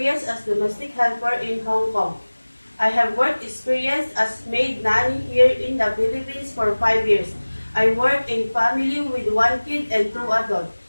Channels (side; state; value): both; inverted; correlation -1.00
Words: as domestic helper in Hong Kong. I have work experience as maid nanny here in the Philippines for 5 years. I work in family with one kid and 2 adults.